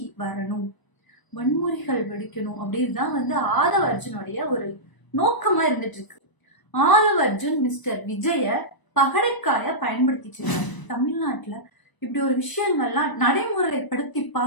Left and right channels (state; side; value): late; right; 1.0 ms